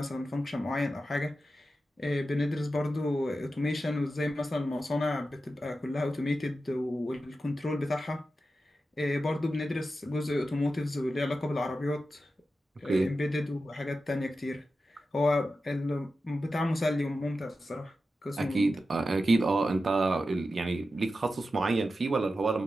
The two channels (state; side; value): normal; both; correlation 0.91